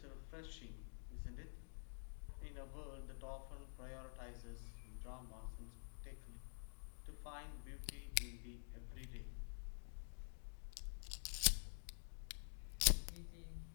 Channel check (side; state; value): right; silent; digital silence